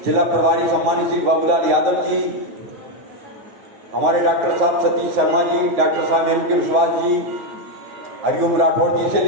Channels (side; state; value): left; late; 9.4 ms